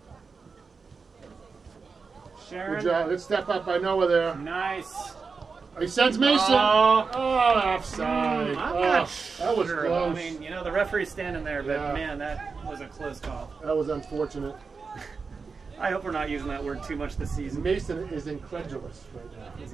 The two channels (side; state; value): left; quieter; 4.8 dB